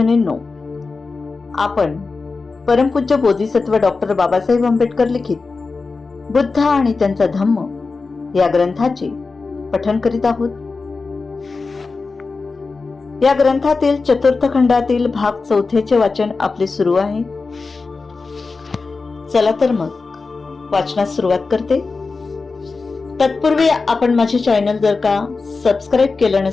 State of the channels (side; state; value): right; quieter; 4.1 dB